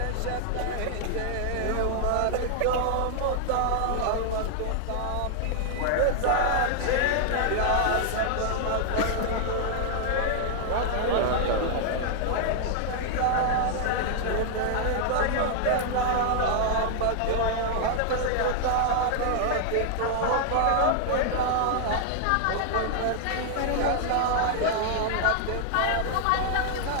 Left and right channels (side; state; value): both; different; correlation -0.01